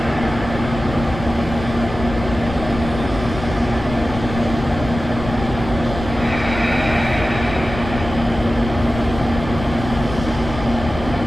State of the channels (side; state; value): left; noise; rumble, 9 dB below the sound